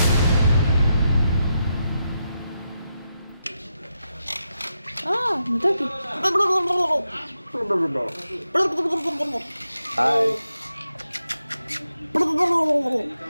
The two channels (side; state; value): both; inverted; correlation -0.85